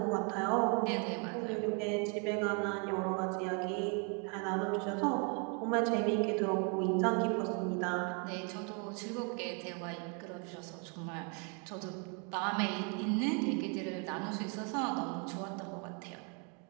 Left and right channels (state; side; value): quieter; left; 36.9 dB